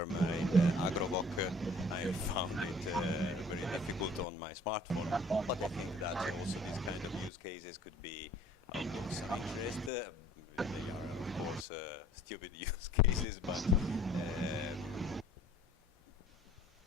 in Agrovoc. I found it very difficult on my smartphone, but I think that also these kind of use cases could be of some interest. They are, of course, stupid use cases, but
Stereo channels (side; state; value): both; normal; correlation 0.53